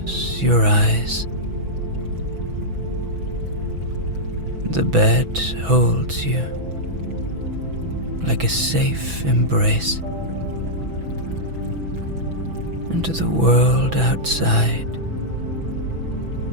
your eyes. The bed holds you like a safe embrace, and the world outside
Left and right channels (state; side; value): late; left; 6.0 ms